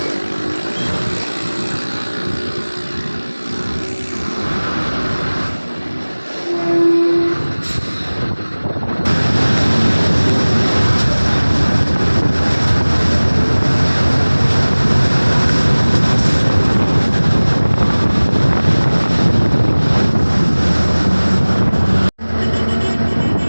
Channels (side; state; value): both; inverted; correlation -1.00